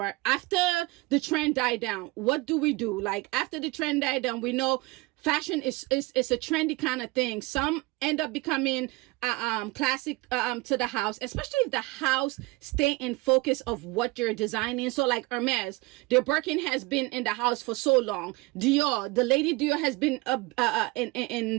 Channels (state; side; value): quieter; left; 23.1 dB